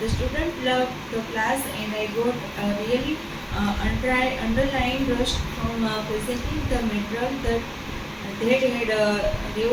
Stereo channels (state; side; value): identical; both; correlation 1.00